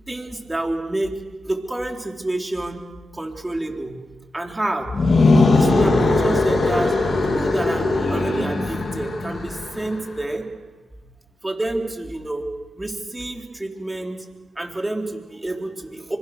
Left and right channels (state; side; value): normal; both; correlation 0.91